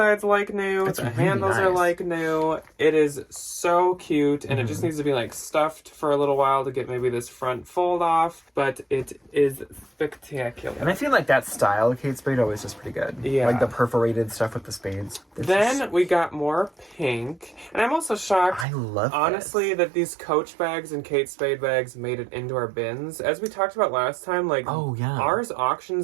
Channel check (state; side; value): drops out; left; at 18.7 s